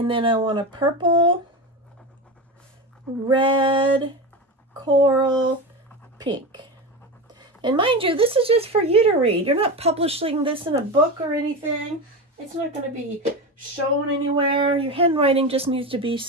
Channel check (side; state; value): both; normal; correlation 0.21